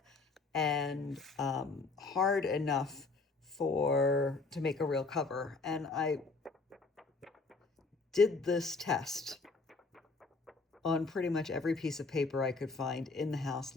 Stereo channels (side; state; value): right; quieter; 3.9 dB